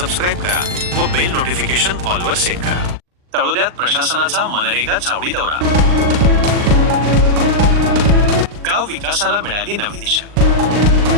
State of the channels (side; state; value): left; late; 39 ms